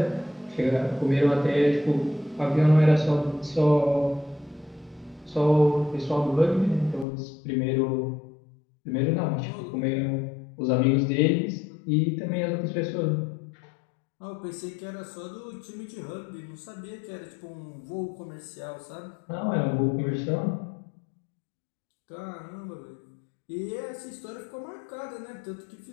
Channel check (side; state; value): right; drops out; at 7.1 s